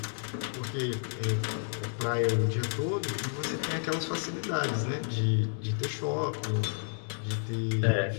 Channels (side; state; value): right; silent; digital silence